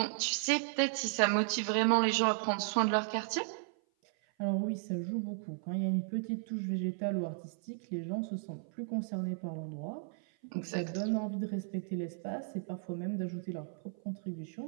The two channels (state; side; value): silent; left; 54 dB below the other